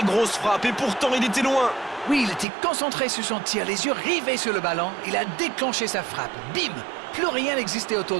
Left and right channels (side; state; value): left; drops out; at 2.5 s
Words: grosse frappe. Et pourtant, il était loin. Oui, il était concentré sur son tir, les yeux rivés sur le ballon. Il a déclenché sa frappe. Bim! Plus rien n'existait autour